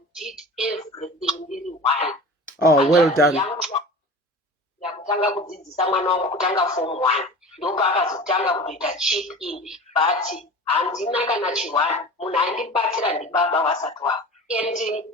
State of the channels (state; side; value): normal; both; correlation 0.36